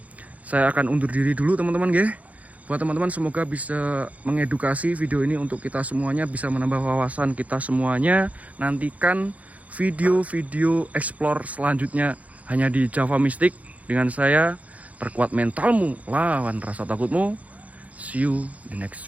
saya akan undur diri dulu teman-teman ya. Buat teman-teman semoga bisa mengedukasi video ini untuk kita semuanya, bisa menambah wawasan kita semuanya. Nantikan video-video explore selanjutnya hanya di Java Mystic dengan saya. Perkuat mentalmu, lawan rasa takutmu. See you the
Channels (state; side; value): late; left; 0.070 ms